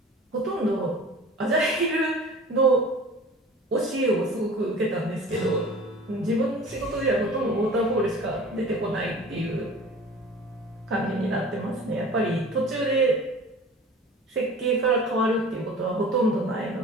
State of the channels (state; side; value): normal; both; correlation 0.42